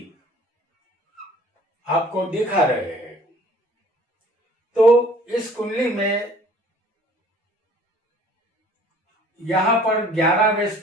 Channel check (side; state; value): both; normal; correlation 0.52